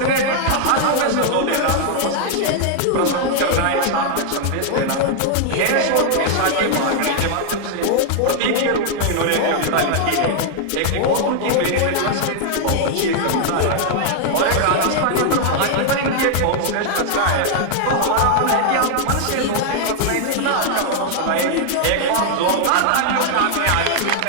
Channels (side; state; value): both; different; correlation 0.00